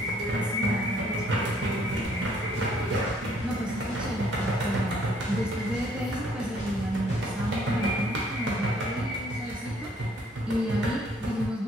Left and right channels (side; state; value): both; normal; correlation 0.63